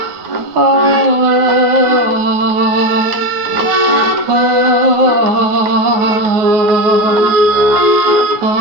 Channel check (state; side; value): late; left; 9.4 ms